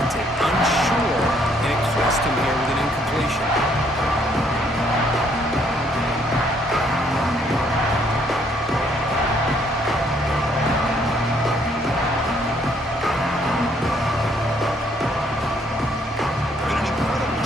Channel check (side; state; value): both; normal; correlation 0.67